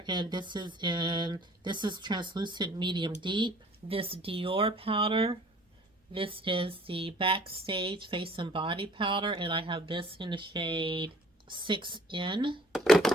and this is translucent medium deep. This Dior powder, this is the Backstage face and body powder, and I have this in the shade 6N.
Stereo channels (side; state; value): both; normal; correlation 0.54